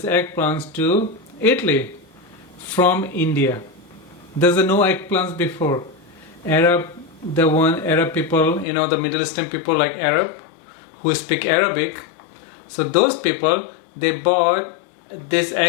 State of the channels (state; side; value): drops out; right; at 8.7 s